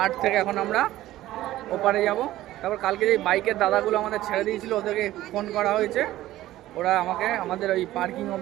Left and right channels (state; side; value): quieter; left; 15.0 dB